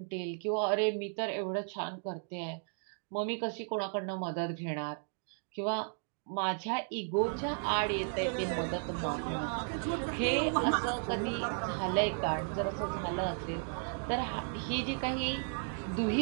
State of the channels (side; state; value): left; silent; 55 dB below the other